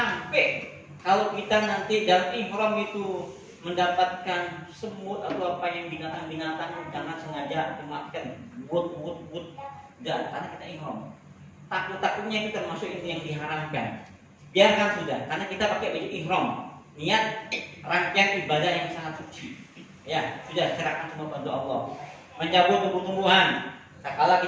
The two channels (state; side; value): identical; both; correlation 1.00